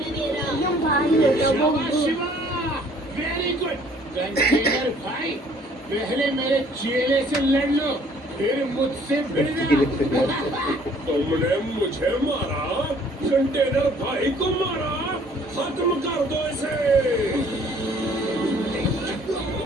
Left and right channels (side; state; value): both; normal; correlation 0.58